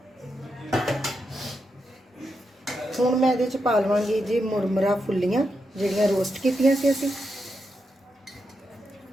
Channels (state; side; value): normal; both; correlation 0.85